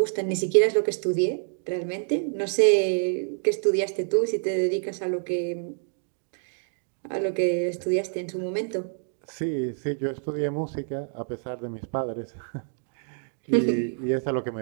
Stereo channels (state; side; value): silent; left; digital silence